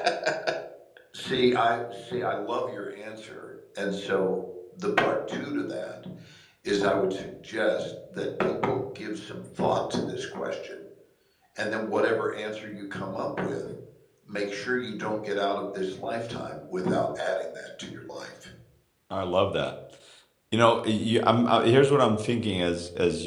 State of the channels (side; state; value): both; identical; correlation 1.00